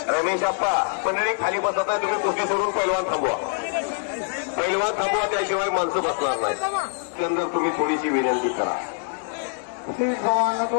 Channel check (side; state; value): right; silent; 58 dB below the other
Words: रमेश अप्पा मंडळी खाली बसत आहे. तुम्ही कुस्ती सोडून पैलवान थांबवा. पैलवान थांबवा त्याशिवाय माणसं बसणार नाही. त्यानंतर तुम्ही थोडीशी विनंती करा.